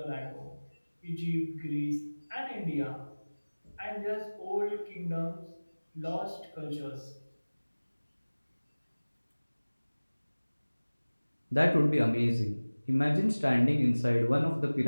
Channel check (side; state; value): both; inverted; correlation -1.00